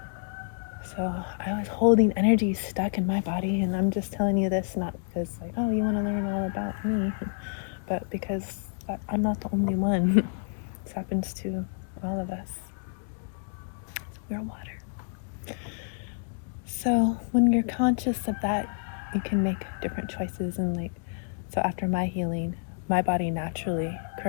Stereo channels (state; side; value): silent; right; digital silence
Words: So I was holding energy stuck in my body, and I'm just telling you this not because like, oh, you want to learn all about me, but because I'm not the only one. This happens to all of us. We're water. So when you're conscious of that, you can make different choices. And so after my healing, my body naturally